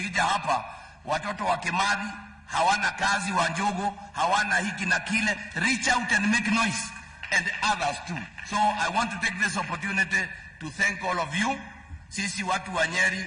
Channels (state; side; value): identical; both; correlation 1.00